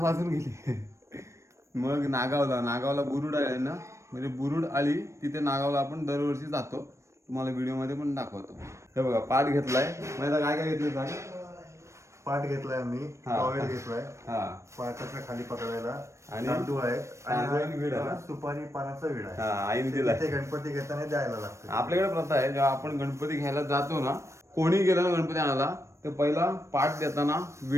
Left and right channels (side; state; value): left; late; 0.14 ms